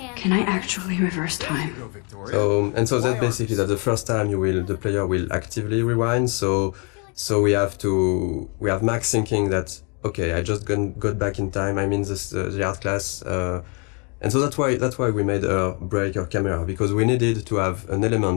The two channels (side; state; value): right; quieter; 33.7 dB